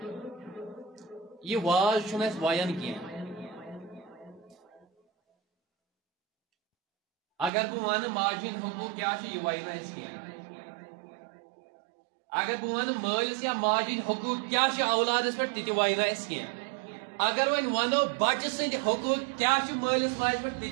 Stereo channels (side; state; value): left; drops out; at 7.5 s